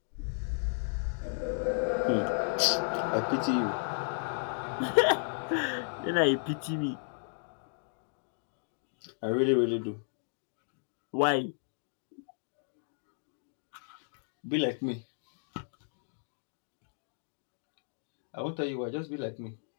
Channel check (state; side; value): silent; right; digital silence